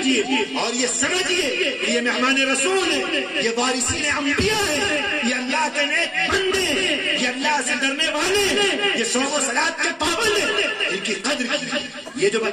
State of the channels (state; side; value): identical; both; correlation 1.00